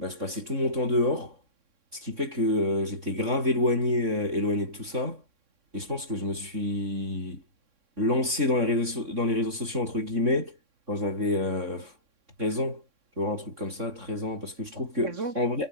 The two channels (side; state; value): left; late; 3.6 ms